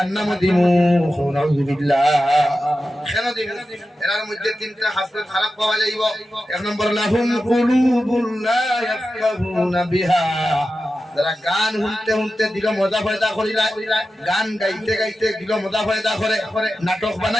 দিমু নাউযুবিল্লাহ কেন দিমু এর মধ্যে তিনটা হাসরত খারাপ পাওয়া যাইব এক নম্বর লাহুম কুলুবুন লা ইয়াফকাহুনা বিহা যারা গান শুনতে শুনতে দিল মজা ফায়দা করিলা গান গাইতে গাইতে দিল মজা ফায়দা করে নাটক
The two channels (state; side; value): normal; both; correlation 0.92